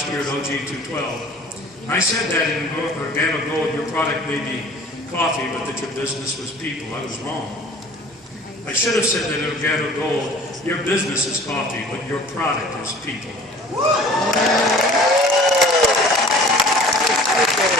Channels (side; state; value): both; normal; correlation 0.47